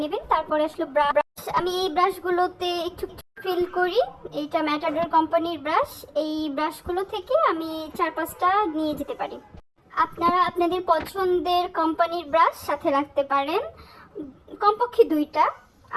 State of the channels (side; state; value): both; identical; correlation 1.00